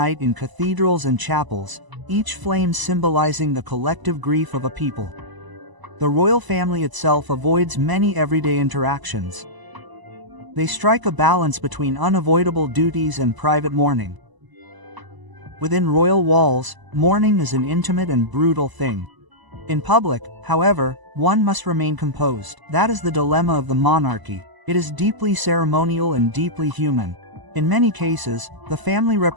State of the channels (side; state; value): left; late; 1.0 ms